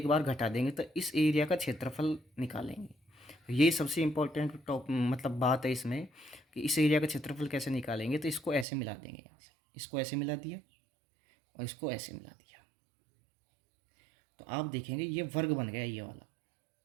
बार घटा देंगे तो इस एरिया का क्षेत्रफल निकालेंगे। तो ये सबसे इम्पोर्टेंट टॉप मतलब बात है इसमें, कि इस एरिया का क्षेत्रफल कैसे निकालेंगे। तो इसको ऐसे मिला देंगे, यहाँ से इसको ऐसे मिला दिया और इसको ऐसे मिला दिया, तो आप देखेंगे ये वर्ग बन गया। ये वाला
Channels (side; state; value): left; drops out; at 8.7 s